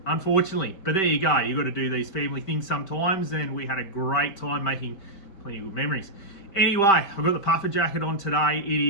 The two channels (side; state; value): right; late; 5.1 ms